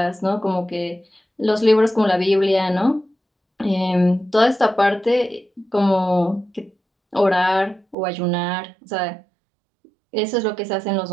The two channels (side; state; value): left; drops out; at 8.0 s